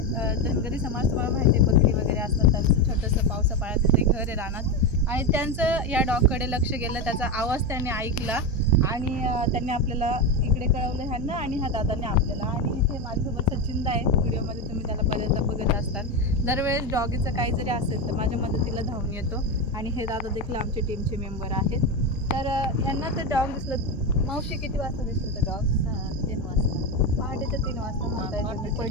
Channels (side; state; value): both; normal; correlation 0.14